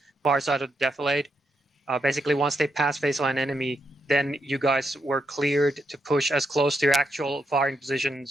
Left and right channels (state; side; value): normal; both; correlation 0.81